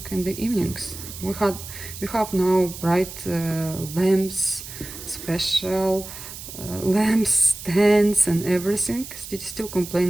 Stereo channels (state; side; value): noise; right; hiss, 12 dB below the sound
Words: in the evenings. We have now bright lamps, special lamps, stands and everything. Still